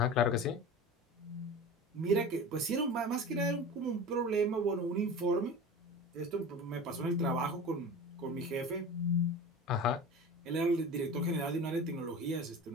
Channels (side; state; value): both; normal; correlation 0.33